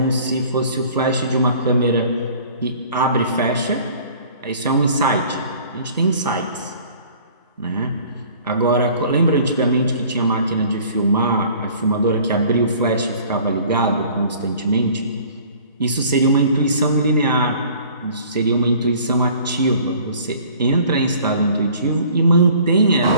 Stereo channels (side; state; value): both; inverted; correlation -0.51